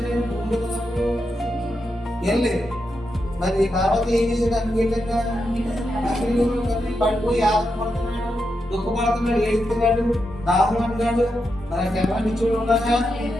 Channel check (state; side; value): normal; both; correlation 0.86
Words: ఏం లేదు. మరి తర్వాత ఏం చేసాడు? అనుకూలంగా పడిపోయి ఆశపడుతున్నాడు, దుఃఖపడుతున్నాడు, ఏడుస్తున్నాడు, దాహం అంటున్నాడు. మరి ఎవరిని చూడాలా?